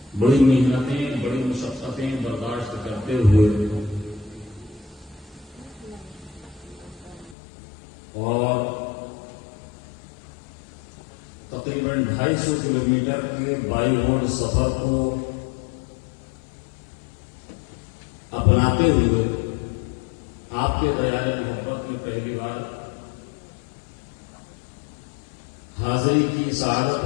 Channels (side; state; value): right; drops out; at 7.4 s